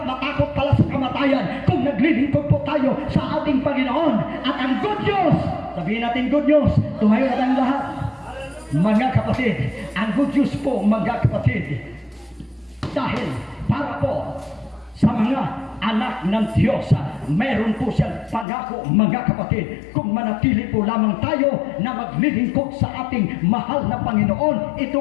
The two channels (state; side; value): drops out; right; at 18.4 s